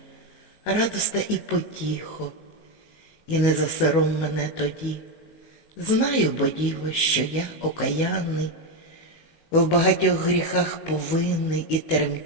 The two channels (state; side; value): late; right; 19 ms